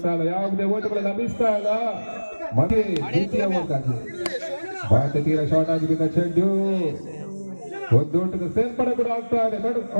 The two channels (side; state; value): both; inverted; correlation -1.00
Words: ಇಲ್ಲ. ಯಾವುದೇ ಓಟುಗಳು ಲಭಿಸ್ತಾ ಇಲ್ಲ. ಮತ್ತೆ ದ್ವಿತೀಯ ಓಟಾಗಿ ಮತ್ತೆ ತೀರ ಶಾರ್ಟ್ ಆಗಿ ಬಿದ್ದ ಚೆಂಡು ಒಂದು ಓಟದ ಸೇರ್ಪಡೆ ಕೂಡ ಆಗ್ತಾ ಇದೆ.